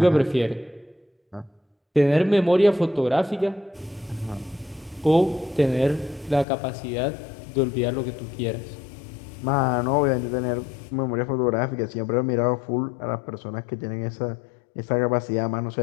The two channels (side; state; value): right; drops out; at 6.5 s